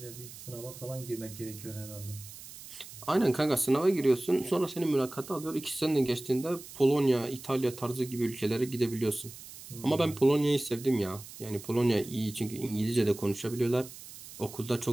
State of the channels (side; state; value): right; noise; hiss, 15 dB below the sound